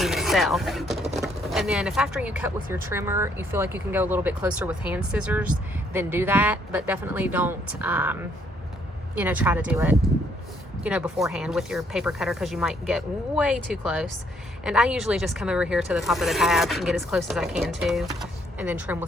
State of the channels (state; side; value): normal; both; correlation 0.69